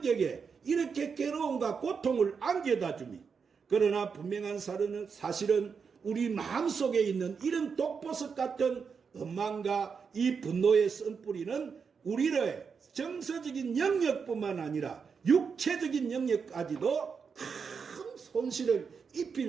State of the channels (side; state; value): left; quieter; 5.9 dB